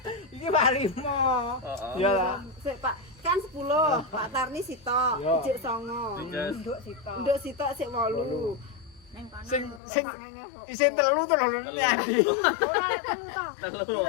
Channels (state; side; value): drops out; right; at 9.8 s